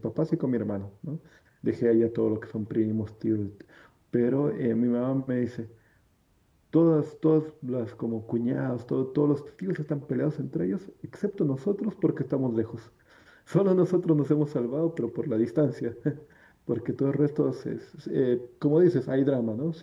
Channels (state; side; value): identical; both; correlation 1.00